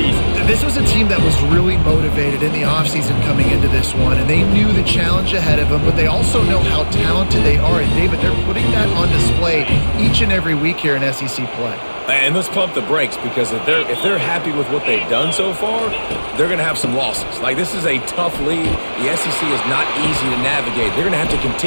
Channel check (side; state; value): both; inverted; correlation -1.00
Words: This was a team that was really motivated in the offseason coming into this one, and they knew the challenge ahead of them, but they also know how talented they are. And, David, they're putting that on display each and every week here in SEC play. And let's pump the brakes, because if they're happy with what they've done so far, they're going to have some losses. Like, this is a tough league. The SEC is not easy to navigate. They're going to have to